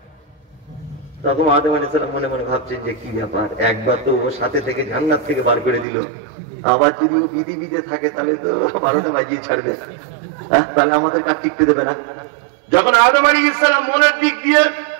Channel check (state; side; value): drops out; left; at 5.9 s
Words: তখন আদম আলাইহিস সালাম মনে মনে ভাবছেন যে কি ব্যাপার, একবার তো ওর সাথে থেকে জান্নাত থেকে বার করে দিল, আবার যদি ও পৃথিবীতে থাকে তাহলে তো 12টা বাজিয়ে ছাড়বে, তাহলে আমাদের কাজ টিকতে দেবে না। যখন আদম আলাইহিস সালাম মনের দিক দিয়ে